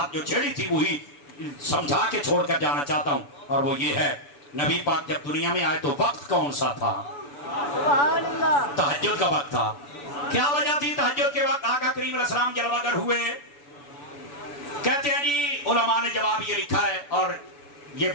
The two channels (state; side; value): late; right; 7.0 ms